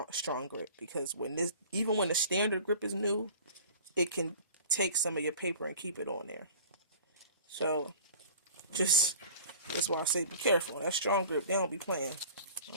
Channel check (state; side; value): inverted; both; correlation -0.45